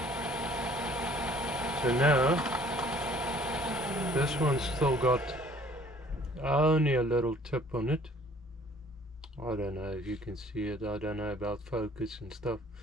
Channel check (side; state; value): both; normal; correlation 0.55